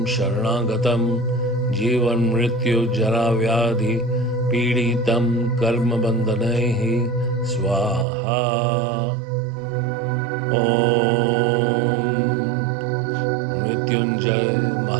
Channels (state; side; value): drops out; left; at 8.1 s